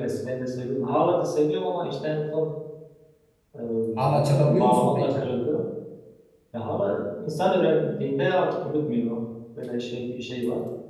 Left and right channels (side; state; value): both; identical; correlation 1.00